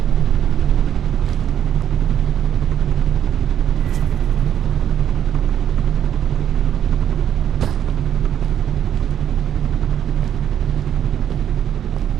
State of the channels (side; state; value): left; quieter; 9.8 dB